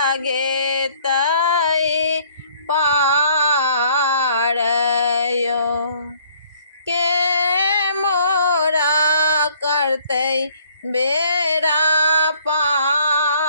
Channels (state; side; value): inverted; both; correlation -0.60